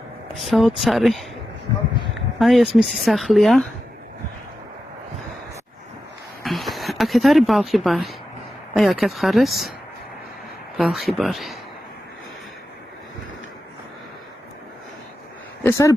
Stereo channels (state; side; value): normal; both; correlation 0.90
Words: საოცარი. აი ეს მისი სახლია. აქეთ არის ბალხი ბარი. აი აქეთ ხარეს ბალხი ბარი. ეს არის